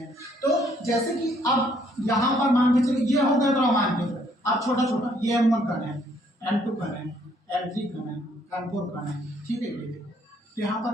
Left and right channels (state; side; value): normal; both; correlation 0.66